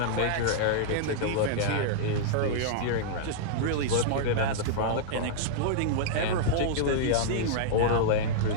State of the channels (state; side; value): different; both; correlation -0.02